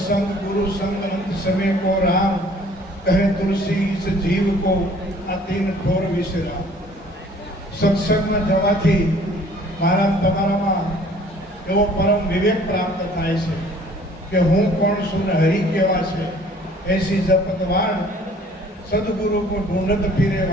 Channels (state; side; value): normal; both; correlation 0.54